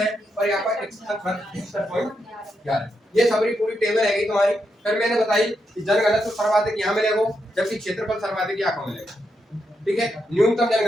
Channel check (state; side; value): normal; both; correlation 0.83